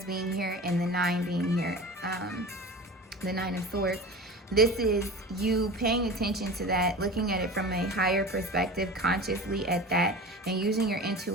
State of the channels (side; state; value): both; normal; correlation 0.34